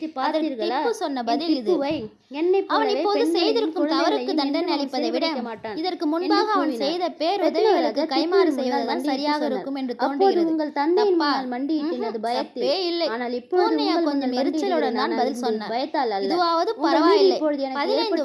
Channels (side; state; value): both; identical; correlation 1.00